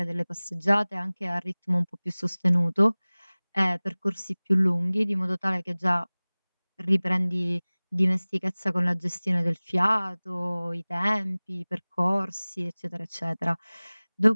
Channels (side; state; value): both; inverted; correlation -1.00